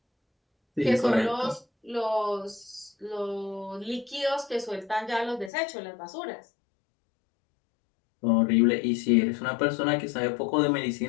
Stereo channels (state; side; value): drops out; right; at 5.5 s